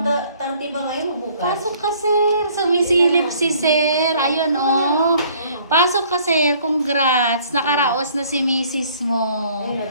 Bukas pa, 30 ba ngayon o bukas? Pasok ka, sir. Sumisilip si sir. Ayun, oh. Pasok ka, sir. Congrats. Nakaraos na si misis mo. Ayun,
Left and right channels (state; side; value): inverted; both; correlation -0.58